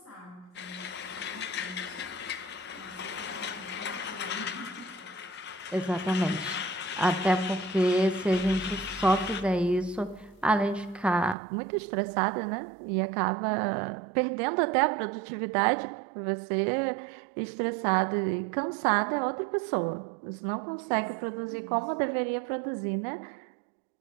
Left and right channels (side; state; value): left; drops out; at 11.4 s